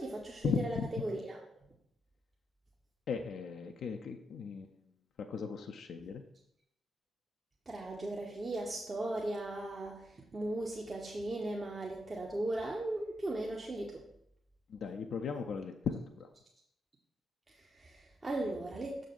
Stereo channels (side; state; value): both; normal; correlation 0.81